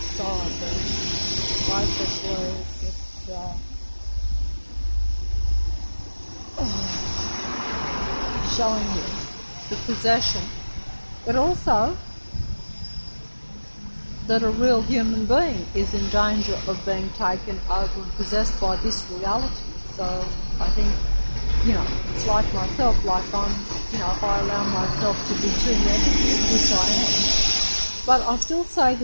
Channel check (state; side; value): inverted; both; correlation -1.00